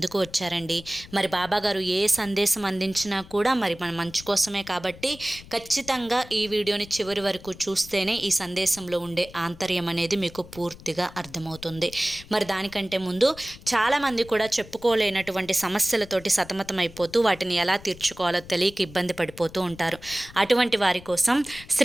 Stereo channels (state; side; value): noise; left; rumble, 19 dB below the sound